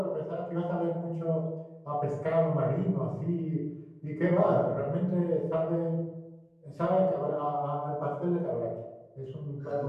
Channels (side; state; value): both; identical; correlation 1.00